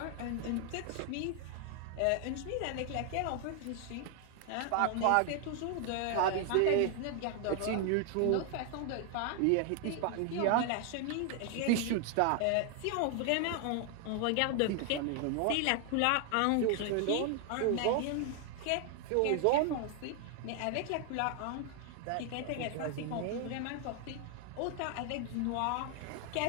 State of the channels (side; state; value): both; different; correlation 0.00